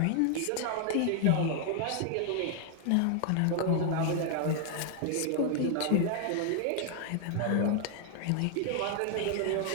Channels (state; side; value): different; both; correlation 0.00